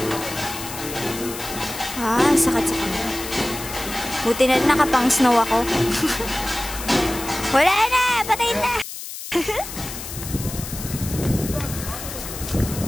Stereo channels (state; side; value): noise; left; hiss, 10 dB below the sound